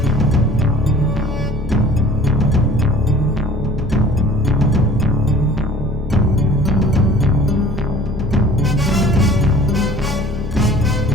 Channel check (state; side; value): normal; both; correlation 0.48